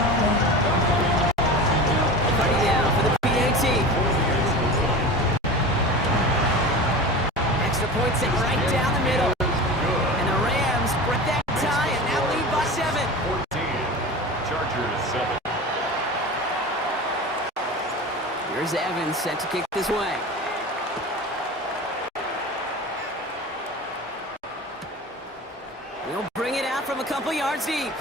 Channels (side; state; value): both; normal; correlation 0.32